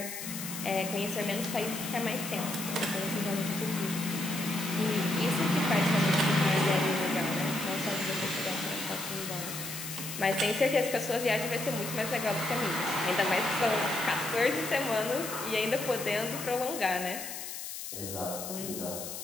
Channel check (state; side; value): noise; left; hiss, 8 dB below the sound